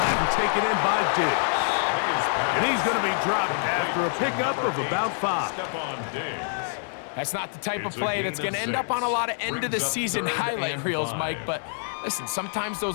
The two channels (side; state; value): right; silent; 60 dB below the other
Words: and taken in by Diggs. And he's going to be dropped after a pickup of about 5. That's not the type of play that's going to end up on a lot of end-of-the-season highlight reels, Mike. But listen, sometimes